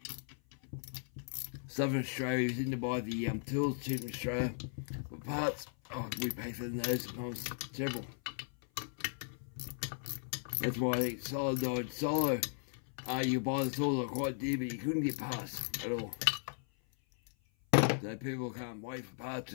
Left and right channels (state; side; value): silent; right; 53 dB below the other